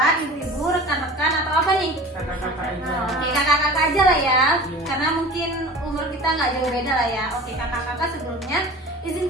ibu-ibu, rekan-rekan, atau apa nih? Kakak-kakak aja. Oke, kakak-kakak aja lah ya, karena mungkin umur kita nggak jauh beda lah ya. Oke, kakak-kakak, sebelumnya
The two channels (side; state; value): both; normal; correlation 0.39